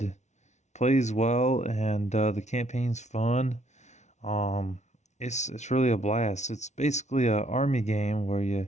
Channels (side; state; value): right; late; 0.33 ms